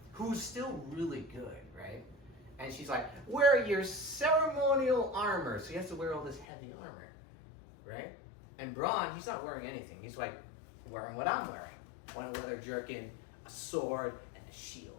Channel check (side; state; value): right; drops out; at 6.5 s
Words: who's still really good, right? And she's like, wear your ceremonial armor. So he has to wear all this heavy armor, right? And Bronn, he's not wearing anything. He's like wearing what I'm wearing. One leather jerkin, a sword, and a